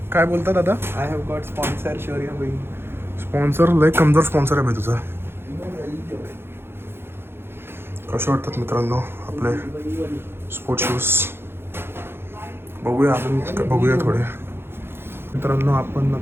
काय बोलता दादा? आय हॅव गॉट स्पॉन्सर शौर्य भाई. स्पॉन्सर लय कमजोर स्पॉन्सर आहे भाई तुझा. कसे वाटतात मित्रांनो आपले स्पोर्ट्स शूज? बघूया अजून बघूया थोडे. मित्रांनो आपण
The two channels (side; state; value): left; late; 0.11 ms